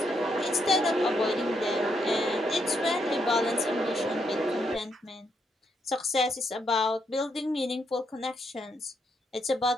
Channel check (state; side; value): normal; both; correlation 0.77